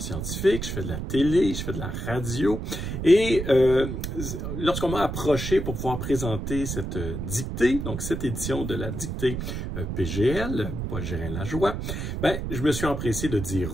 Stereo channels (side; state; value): right; noise; rumble, 4 dB below the sound